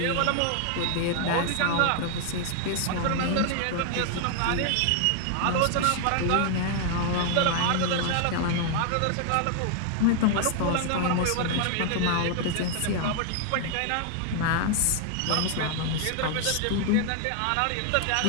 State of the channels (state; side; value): different; both; correlation 0.00